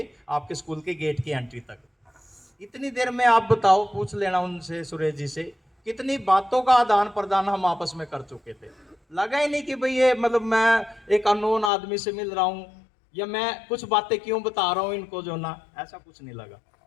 आपके स्कूल के गेट की एंट्री तक। इतनी देर में आप बताओ, पूछ लेना उनसे, सुरेश जी से, कितनी बातों का आदान प्रदान हम आपस में कर चुके थे। लगा ही नहीं कि भाई ये मतलब मैं एक अननोन आदमी से मिल रहा हूँ या मैं कुछ बातें क्यों बता रहा हूँ इनको जो ना, ऐसा कुछ नहीं लगा।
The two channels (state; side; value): drops out; right; at 11.7 s